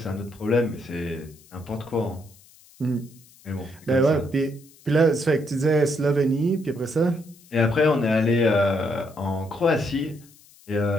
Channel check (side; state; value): left; noise; hiss, 26 dB below the sound